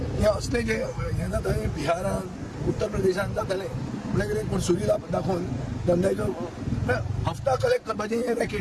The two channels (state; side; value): identical; both; correlation 1.00